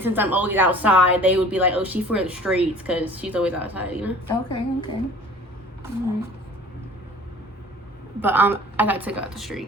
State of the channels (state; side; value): normal; both; correlation 0.47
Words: since I'm always outside, they would be like, oh, she's for the streets because she's always outside, you know? Okay. Alright. But I got took out the